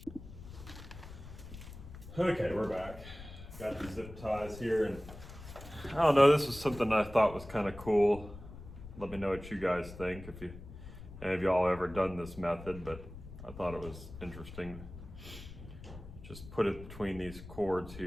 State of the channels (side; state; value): left; noise; rumble, 14 dB below the sound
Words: Okay, we're back. Got the zip ties here, and I don't know, this was something I thought was kind of cool. Let me know what you guys think, if any of y'all ever done this method, but I thought it was interesting. Just put it between these cords